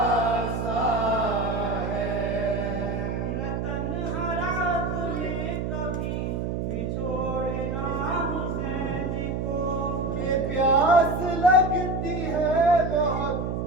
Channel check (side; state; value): right; noise; hum, 2 dB below the sound